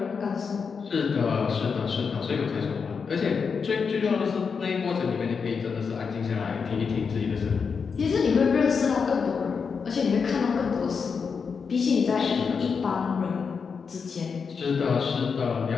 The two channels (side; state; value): right; quieter; 5.7 dB